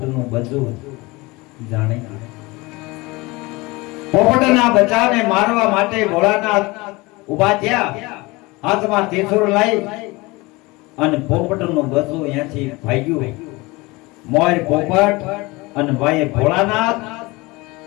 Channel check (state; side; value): quieter; right; 23.4 dB